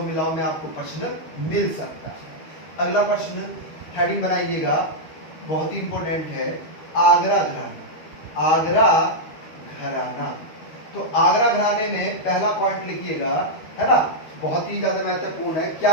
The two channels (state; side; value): late; right; 13 ms